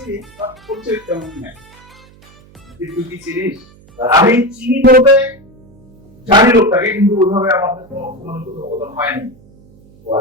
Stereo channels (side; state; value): right; noise; hum, 26 dB below the sound